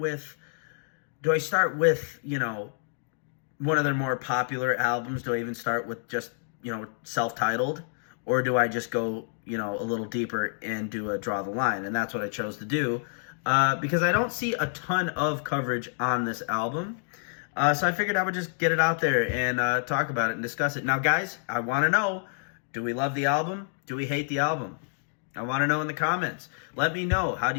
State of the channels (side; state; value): right; silent; digital silence